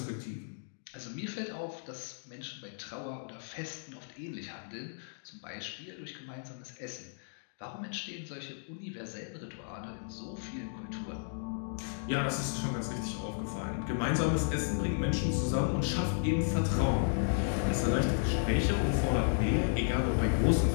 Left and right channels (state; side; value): silent; right; digital silence